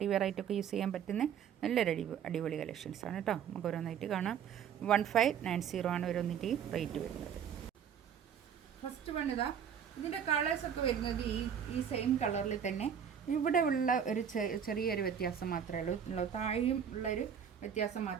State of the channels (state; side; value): quieter; left; 8.2 dB